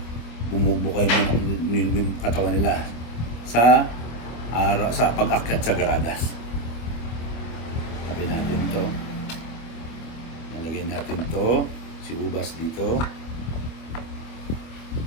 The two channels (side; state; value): right; late; 25 ms